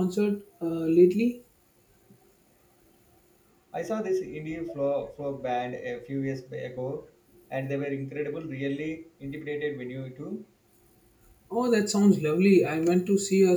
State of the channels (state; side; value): identical; both; correlation 1.00